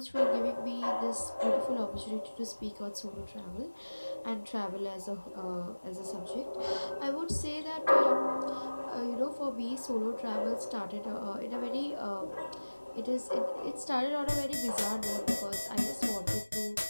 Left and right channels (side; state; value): both; inverted; correlation -1.00